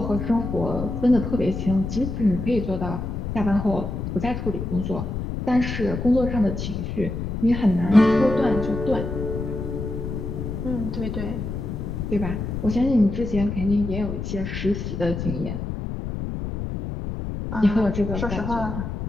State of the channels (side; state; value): left; noise; rumble, 4 dB below the sound